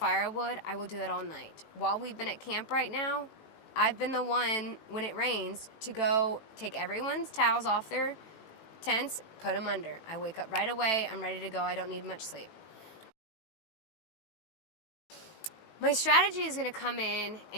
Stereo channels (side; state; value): right; late; 19 ms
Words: I will do that all night. While we've been at camp right now, I've been the one, when it rains, to go take everyone's towels off their tents, put them under. I wake up right away, I'm ready to go, I don't need much sleep. My strategy is going to come in